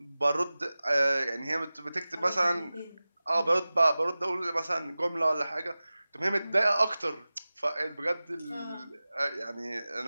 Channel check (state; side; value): inverted; both; correlation -0.97